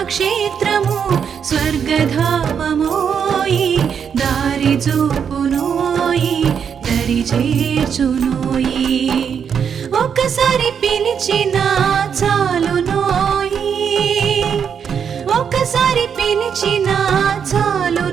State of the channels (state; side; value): quieter; left; 7.4 dB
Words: క్షేత్రము స్వర్గధామమోయి దారి చూపునోయి దరి చేర్చునోయి ఒక్కసారి పిలిచినా చాలునోయి ఒక్కసారి పిలిచినా